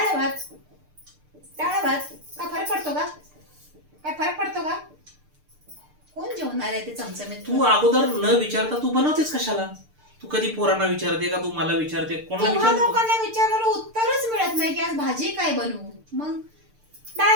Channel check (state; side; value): late; left; 6.7 ms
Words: भात काय फरक पडतो का? काय फरक पडतो का? कोण जेवणार आहे ते चमचमीत? तू अगोदर न विचारता तू बनवतेस कशाला? तू कधी पोरांना विचारते का? तू मला विचारते? कोणाला तुम्हा विचारते? लोकांना विचारलं उत्तरच मिळत नाही की आज भाजी काय बनवू. मग